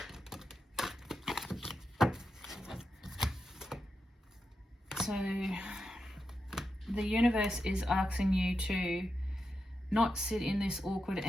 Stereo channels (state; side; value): normal; both; correlation 0.87